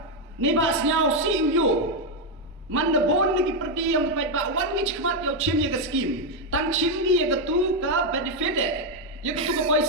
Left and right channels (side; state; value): both; normal; correlation 0.02